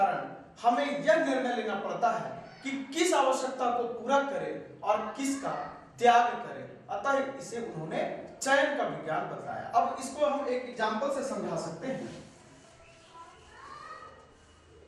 हमें यह निर्णय लेना पड़ता है कि किस आवश्यकता को पूरा करें और किसका त्याग करें। अतः इसे उन्होंने चयन का विज्ञान बताया। अब इसको हम एक एग्जाम्पल से समझा सकते हैं।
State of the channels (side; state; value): both; identical; correlation 1.00